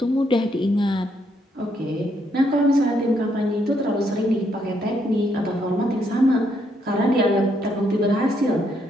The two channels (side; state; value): both; normal; correlation 0.74